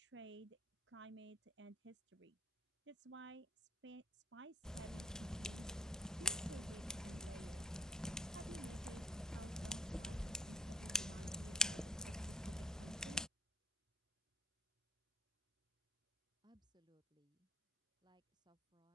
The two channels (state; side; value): normal; both; correlation 0.60